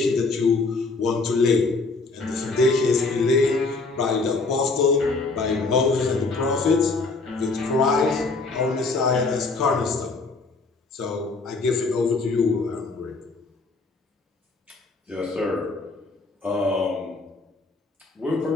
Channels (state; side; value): quieter; right; 3.8 dB